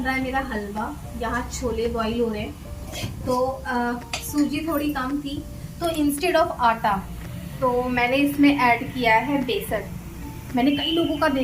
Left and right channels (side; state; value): both; identical; correlation 1.00